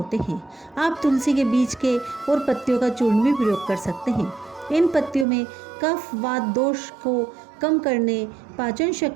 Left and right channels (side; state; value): left; drops out; at 5.2 s